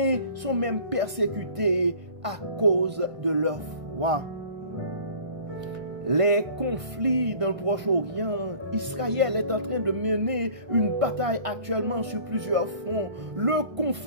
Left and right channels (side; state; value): left; late; 1.5 ms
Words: sont même persécutés à cause de leur foi. Les conflits dans le Proche-Orient, Israël est en train de mener une bataille actuellement sur plusieurs fronts. Le